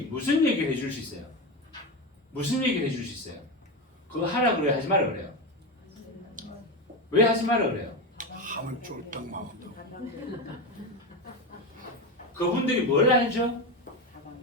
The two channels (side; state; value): both; normal; correlation 0.18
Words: 무슨 얘기를 해줄 수 있어요? 무슨 얘기를 해줄 수 있어요? 그거 하라 그래요? 하지 마라 그래요? 왜 하지 마라 그래요? 하면 쫄딱 망한다. 그분들이 뭘 알죠?